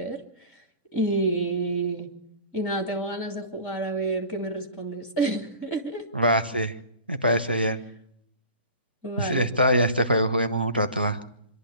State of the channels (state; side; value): inverted; both; correlation -0.41